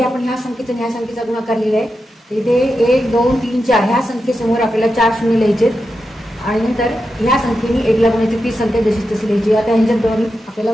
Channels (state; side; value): normal; both; correlation 0.89